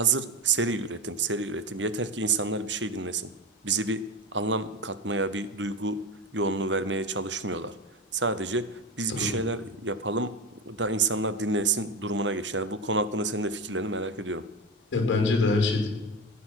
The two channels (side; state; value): both; normal; correlation 0.22